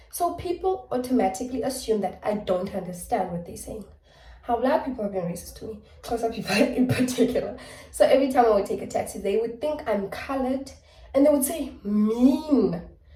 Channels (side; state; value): both; identical; correlation 1.00